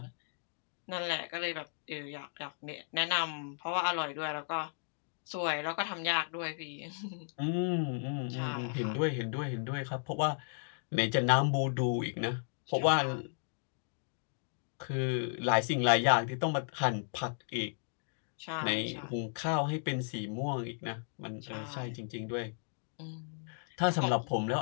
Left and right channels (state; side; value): silent; right; digital silence